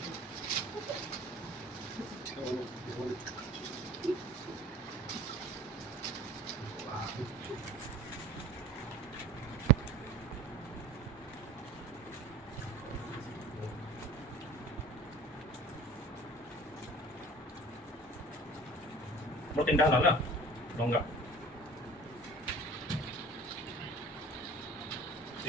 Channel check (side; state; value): both; normal; correlation 0.43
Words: Mau tindah lah, no enggak.